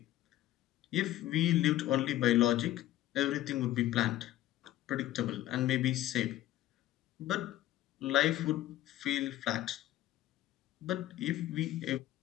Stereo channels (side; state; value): right; quieter; 14.2 dB